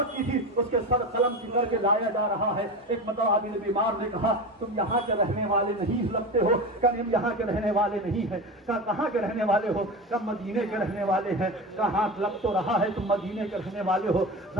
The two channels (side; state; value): both; normal; correlation 0.25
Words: کی تھی، اس کے سر قلم کی کر کے لایا جا رہا ہے۔ ایک مرتبہ عابد بیمار نے کہا تم یہاں کے رہنے والے نہیں لگتے ہو، کہ ہم یہاں کے رہنے والے نہیں ہیں۔ کہا کہاں کے رہنے والے ہو؟ کہ مدینے کے رہنے والے ہیں۔ کہا ہاں لگ تو رہا ہے تم مدینے کے رہنے والے ہو،